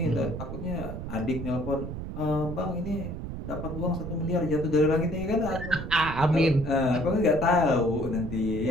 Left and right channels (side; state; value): right; noise; rumble, 7 dB below the sound